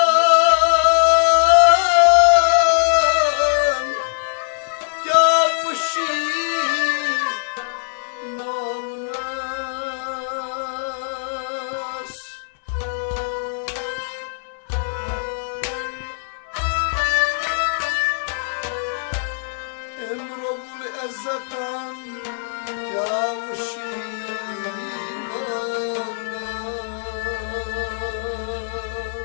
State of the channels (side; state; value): right; silent; digital silence